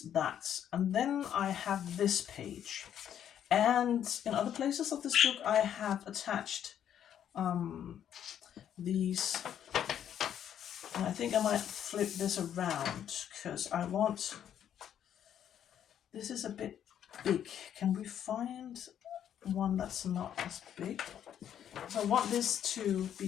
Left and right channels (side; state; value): right; quieter; 9.8 dB